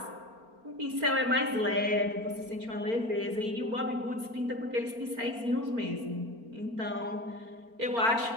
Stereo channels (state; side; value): late; left; 4.4 ms